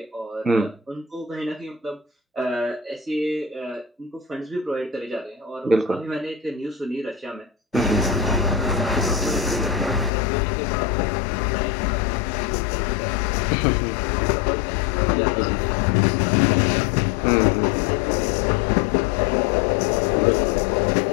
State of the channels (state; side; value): drops out; right; at 10.1 s